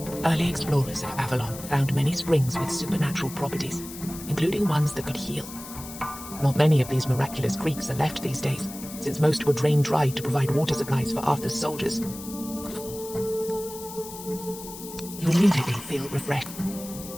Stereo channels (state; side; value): noise; left; hiss, 13 dB below the sound